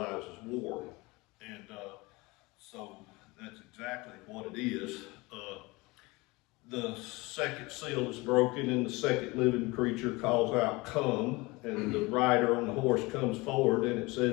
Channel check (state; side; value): quieter; right; 23.6 dB